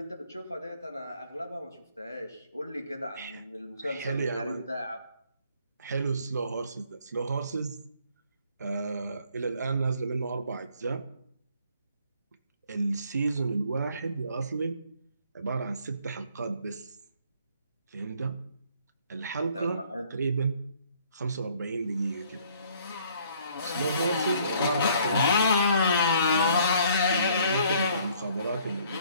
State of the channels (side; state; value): both; inverted; correlation -0.61